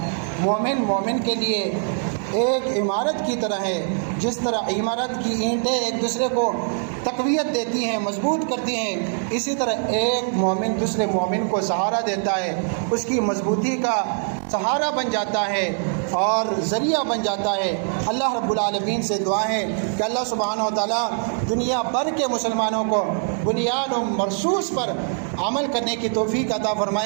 مومن کے لیے ایک عمارت کی طرح ہے، جس طرح عمارت کی اینٹیں ایک دوسرے کو تقویت دیتی ہیں، مضبوط کرتی ہیں، اسی طرح ایک مومن دوسرے مومن کو سہارا دیتا ہے، اس کی مضبوطی کا سہارا بن جاتا ہے اور ذریعہ بن جاتا ہے۔ اللہ رب العالمین سے دعا ہے کہ اللہ سبحانہ و تعالیٰ دنیا بھر کے مسلمانوں کو بنیان و مرصوص پر عمل کرنے کی توفیق عطا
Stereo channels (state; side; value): silent; left; 59 dB below the other